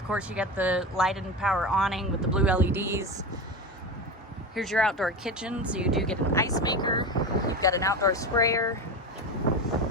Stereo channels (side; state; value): both; normal; correlation 0.23